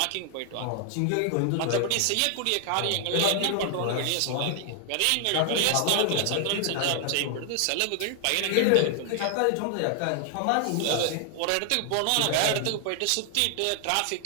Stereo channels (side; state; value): both; different; correlation 0.00